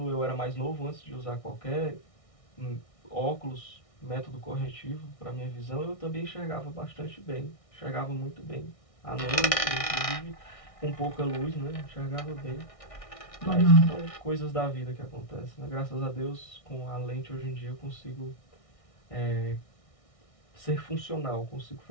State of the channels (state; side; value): late; right; 1.6 ms